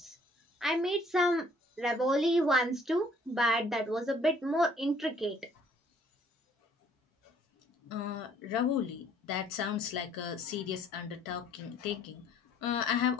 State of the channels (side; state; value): both; normal; correlation 0.60